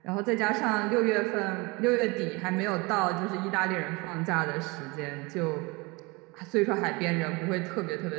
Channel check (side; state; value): left; quieter; 26.0 dB